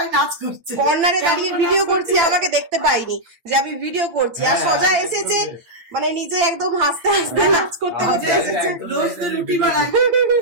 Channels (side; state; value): left; late; 8.8 ms